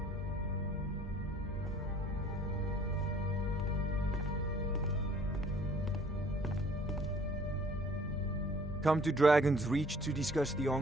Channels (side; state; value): both; normal; correlation 0.55